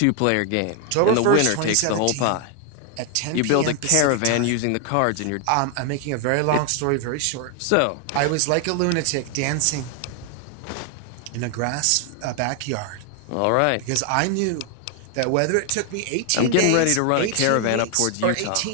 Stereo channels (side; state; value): both; different; correlation 0.00